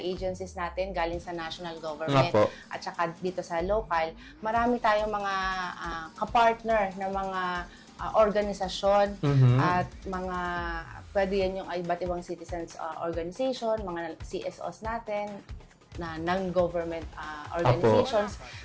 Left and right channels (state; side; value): identical; both; correlation 1.00